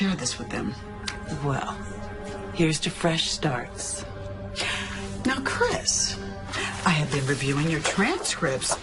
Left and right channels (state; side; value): identical; both; correlation 1.00